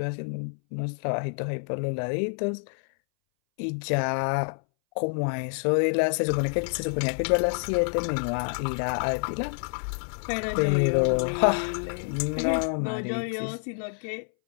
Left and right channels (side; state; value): right; silent; 60 dB below the other